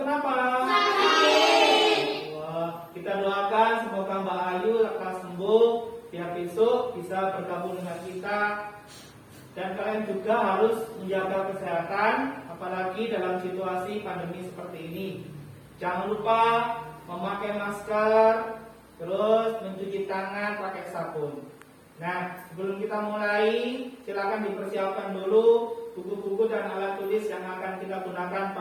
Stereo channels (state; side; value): identical; both; correlation 1.00